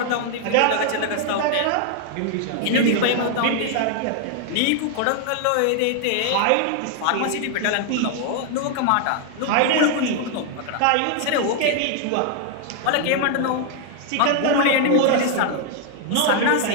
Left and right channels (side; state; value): both; different; correlation 0.00